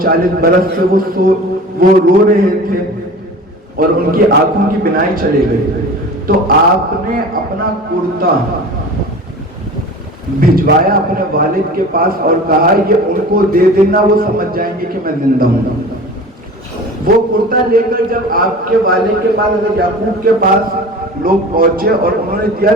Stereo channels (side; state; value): both; normal; correlation 0.38